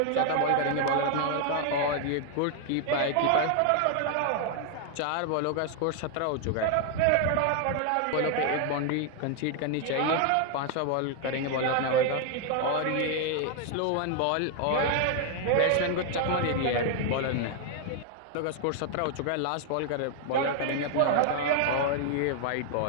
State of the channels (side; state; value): both; different; correlation 0.00